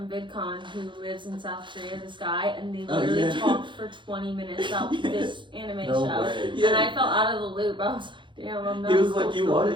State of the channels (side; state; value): left; late; 0.23 ms